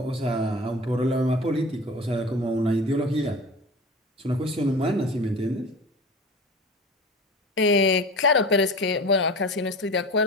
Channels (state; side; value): normal; both; correlation 0.34